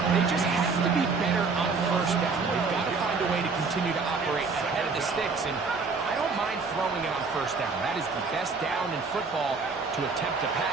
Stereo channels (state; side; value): quieter; left; 4.5 dB